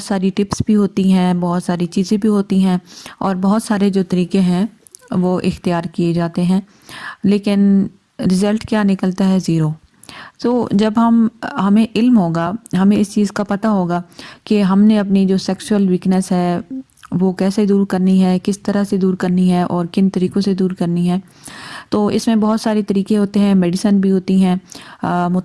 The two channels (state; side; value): identical; both; correlation 1.00